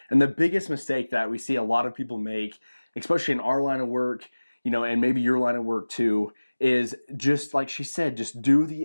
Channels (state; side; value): inverted; both; correlation -1.00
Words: And the biggest mistake that we see a lot of people make, especially in our line of work, and maybe your line of work too, is just like she said, just do